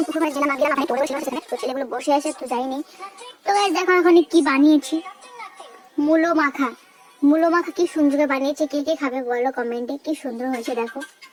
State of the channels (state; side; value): identical; both; correlation 1.00